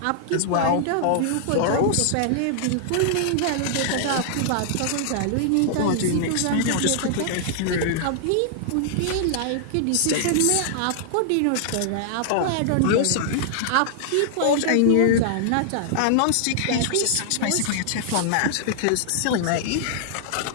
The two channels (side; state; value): both; different; correlation -0.01